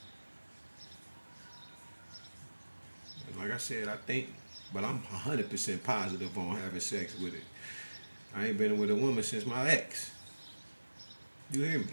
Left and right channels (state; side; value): inverted; both; correlation -1.00